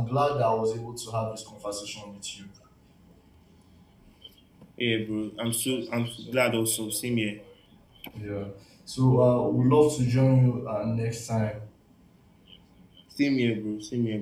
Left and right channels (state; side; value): identical; both; correlation 1.00